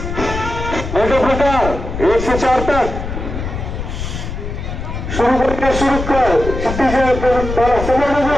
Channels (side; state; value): left; noise; rumble, 6 dB below the sound